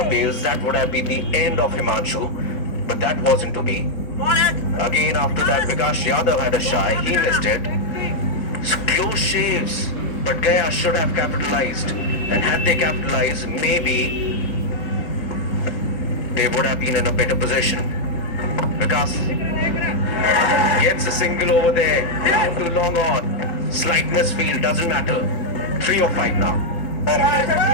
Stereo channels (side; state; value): right; late; 4.3 ms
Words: bails, that would have been the end of Himanshu. But that wasn't to be. Again, after that, Vikas Yadav had a shy. He missed it. So close shaves. But Gaya should have capitalized. And had they capitalized, maybe they would have been in a better position. Vikas gets a single over there. Down to long on. Slight misfield, doesn't matter. 3 or 5 now.